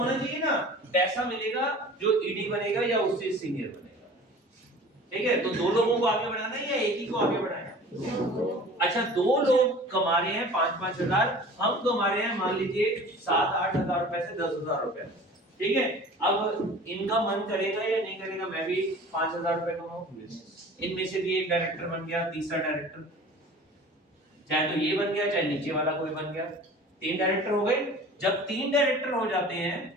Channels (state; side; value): normal; both; correlation 0.42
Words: चाहिए ना, पैसा मिलेगा जो ईडी बनेगा या उससे सीनियर बनेगा, ठीक है। तो 2 लोगों को आगे बढ़ाना है या एक ही को आगे बढ़ाना है, अच्छा 2 लोग कमा रहे हैं 5-5 हजार, हम कमा रहे हैं मान लीजिए 7-8 हजार रुपए से 10 हजार रुपए, ठीक है। अब इनका मन करेगा या नहीं करेगा मैं भी 5000 रुपए कमाऊं, इनमें से भी एक डायरेक्टर बन गया, तीसरा डायरेक्टर, चाहे तो ये बन गया चाहे नीचे वाला कोई बन गया, 3 डायरेक्टर हो गए। जब 3 डायरेक्टर हो जाते हैं